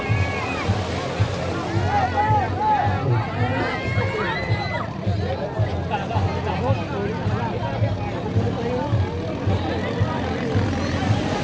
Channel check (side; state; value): both; identical; correlation 1.00